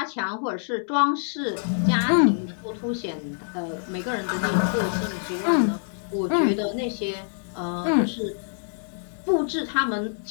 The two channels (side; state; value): right; silent; digital silence